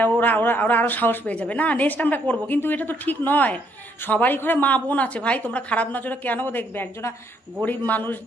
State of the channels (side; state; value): both; normal; correlation 0.71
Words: ওরা ওরা ওরা আরও সাহস পেয়ে যাবে, না নেক্সট আমরা করবো। কিন্তু এটা তো ঠিক নয়। সবারই ঘরে মা বোন আছে ভাই, তোমরা খারাপ নজরে কেন দেখবে? একজনা গরিব মানুষ